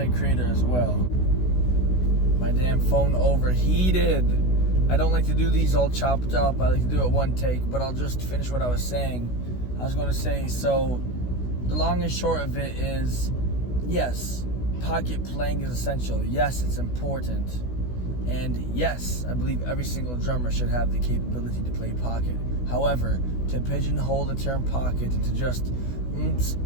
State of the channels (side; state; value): right; late; 16 ms